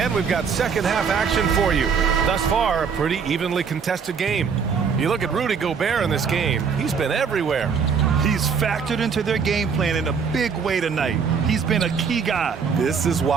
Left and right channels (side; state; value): left; quieter; 6.2 dB